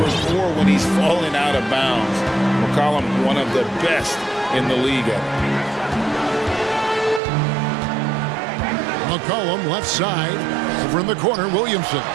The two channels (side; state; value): left; drops out; at 7.2 s